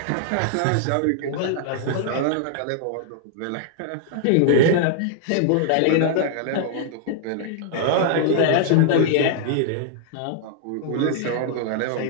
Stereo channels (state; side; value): different; both; correlation -0.01